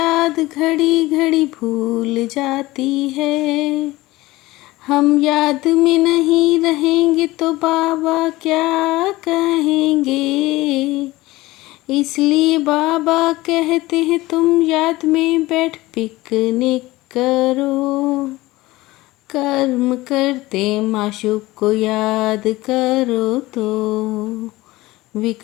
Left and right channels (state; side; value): quieter; right; 19.1 dB